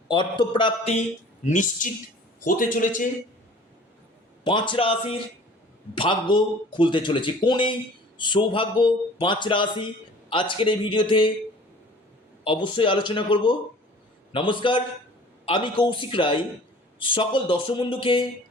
অর্থপ্রাপ্তি নিশ্চিত হতে চলেছে। 5 রাশির ভাগ্য খুলতে চলেছে। কোন এই সৌভাগ্য 5 রাশি আজকের এই ভিডিওতে অবশ্যই আলোচনা করব। নমস্কার, আমি কৌশিক রায়। সকল দর্শক বন্ধুকে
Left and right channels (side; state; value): both; normal; correlation 0.48